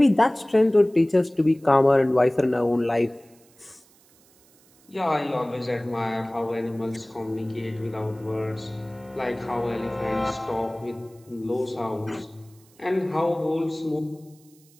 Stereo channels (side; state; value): right; noise; hiss, 30 dB below the sound